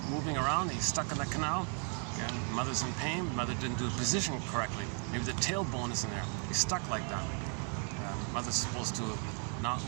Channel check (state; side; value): quieter; left; 37.6 dB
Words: moving around. He's stuck in the canal. Yeah, mother's in pain. Mother didn't do the position correctly. Maybe the tailbone is in there. He's stuck like that. Mother's supposed to not.